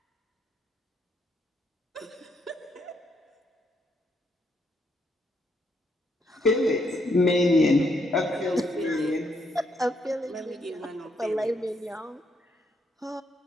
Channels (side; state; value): both; normal; correlation 0.75